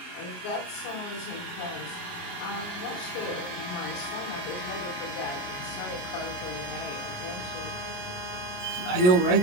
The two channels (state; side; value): late; right; 28 ms